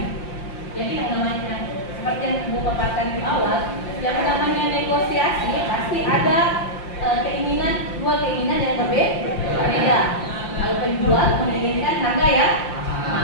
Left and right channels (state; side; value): late; right; 5.7 ms